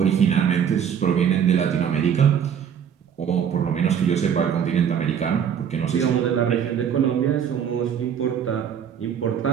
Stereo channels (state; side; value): quieter; left; 8.2 dB